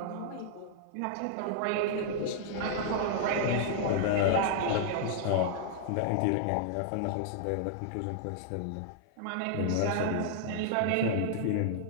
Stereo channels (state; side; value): different; both; correlation -0.01